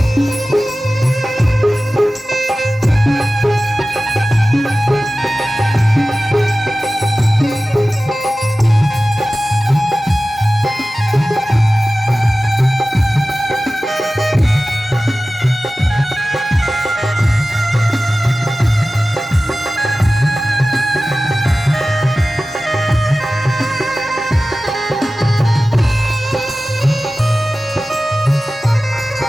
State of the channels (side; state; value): both; normal; correlation 0.96